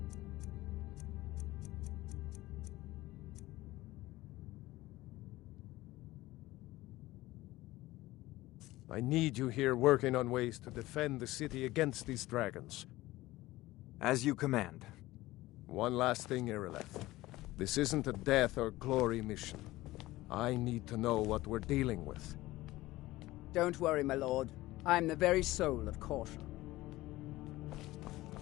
I need you here working on ways to defend the city against these dragons. As you command. One last thing, Irileth. This isn't a death or glory mission. I need to know what we're dealing with. Don't worry, my lord. I'm the very soul of caution.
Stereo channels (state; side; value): quieter; right; 17.9 dB